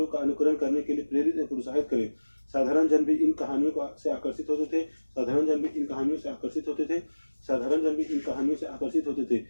का अनुकरण करने के लिए प्रेरित और प्रोत्साहित करें। साधारण जन भी इन कहानियों से आकर्षित होते थे। साधारण जन भी इन कहानियों से आकर्षित होते थे। साधारण जन भी इन कहानियों से आकर्षित होते थे।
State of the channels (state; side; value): inverted; both; correlation -1.00